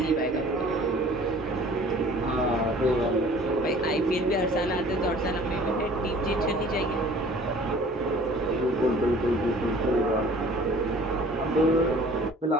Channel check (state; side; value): normal; both; correlation 0.49